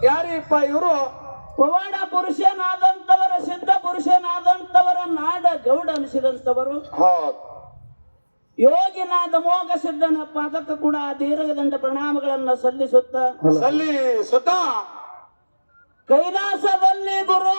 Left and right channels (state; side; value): inverted; both; correlation -1.00